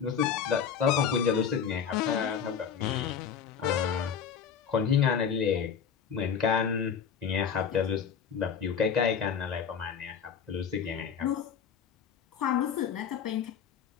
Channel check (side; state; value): right; quieter; 7.3 dB